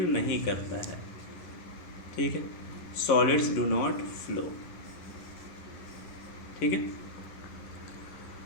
नहीं करता है, ठीक है। सॉलिड्स डू नॉट फ्लो, ठीक है।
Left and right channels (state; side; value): late; right; 10 ms